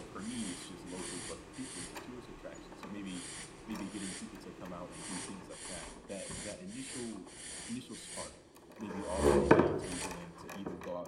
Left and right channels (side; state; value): both; identical; correlation 1.00